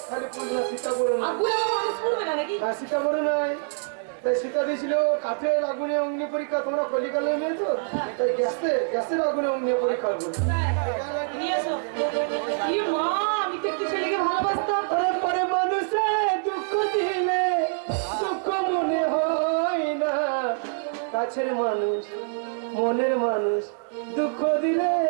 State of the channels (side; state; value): left; silent; digital silence